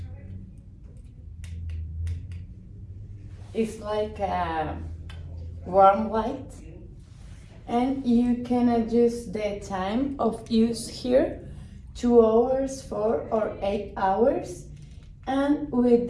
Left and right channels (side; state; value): both; identical; correlation 1.00